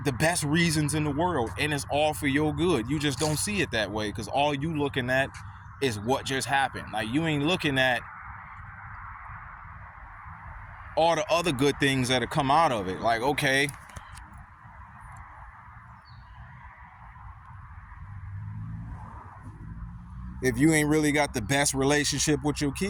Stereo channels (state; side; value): identical; both; correlation 1.00